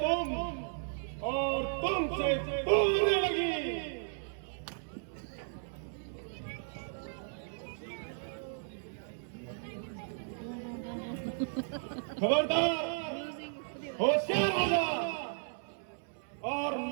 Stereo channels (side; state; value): left; silent; 54 dB below the other